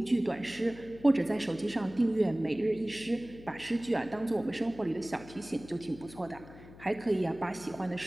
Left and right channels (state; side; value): noise; left; hum, 18 dB below the sound